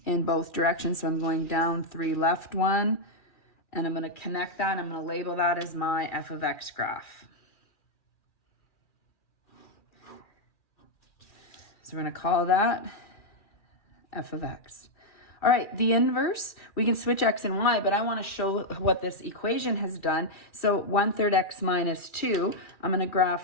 in both directions. So I'm going down 3, left 1, and I'm going to connect that. I'm going to label that as my f of x graph. So we're going to call that f of x. All right, the inverse, we can switch x and y, but I want to show what this equation has done. So 1/3 x minus 2, I'm going to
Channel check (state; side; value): late; right; 2.3 ms